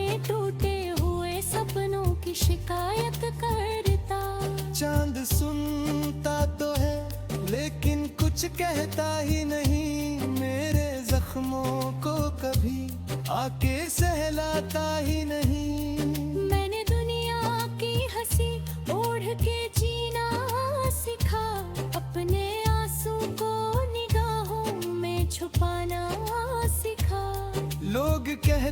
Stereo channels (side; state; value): both; identical; correlation 1.00